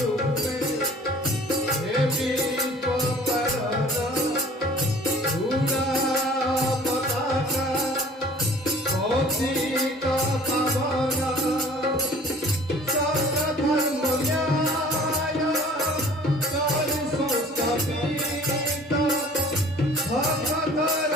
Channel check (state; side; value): normal; both; correlation 0.50